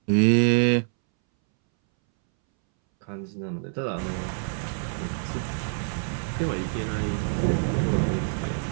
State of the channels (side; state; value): left; silent; 61 dB below the other